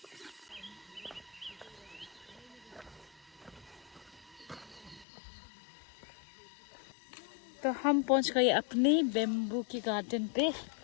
तो हम पहुंच गए अपने बेम्बू की गार्डन पे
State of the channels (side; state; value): right; drops out; at 5.1 s